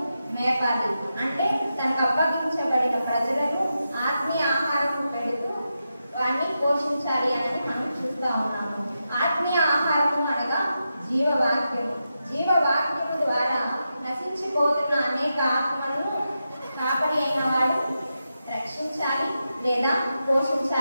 మేపాలి. అంటే తనకు అప్పగించబడిన ప్రజలను ఆత్మీయ ఆహారం పెడుతూ వారిని పోషించాలి అని మనం చూస్తూ ఉన్నాము. ఆత్మీయ ఆహారము అనగా జీవవాక్యము. జీవవాక్యము ద్వారా నశించిపోతున్న అనేక ఆత్మలను కాపరి అయిన వాడు రక్షించాలి లేదా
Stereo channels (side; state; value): both; inverted; correlation -0.88